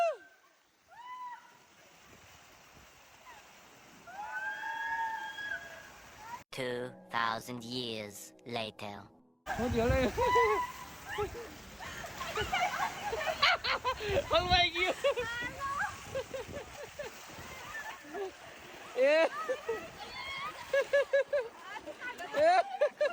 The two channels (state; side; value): identical; both; correlation 1.00